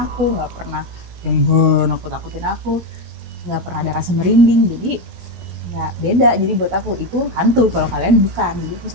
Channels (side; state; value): left; late; 17 ms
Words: aku, nggak pernah yang nakut-nakutin aku, nggak pernah ada rasa merinding, jadi nggak beda. Jadi buat aku itu hantu, kalau kalian bukan, jadi aku